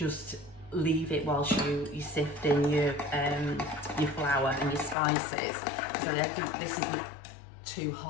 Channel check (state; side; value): drops out; right; at 5.0 s